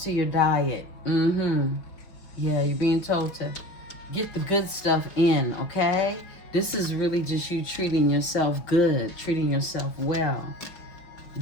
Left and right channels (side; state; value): right; late; 5.0 ms